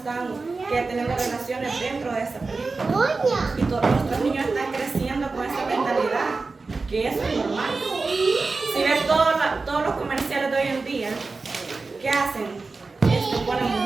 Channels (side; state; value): left; quieter; 3.9 dB